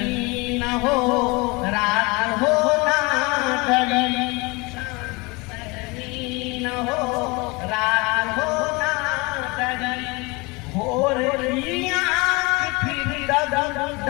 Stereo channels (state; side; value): quieter; right; 25.9 dB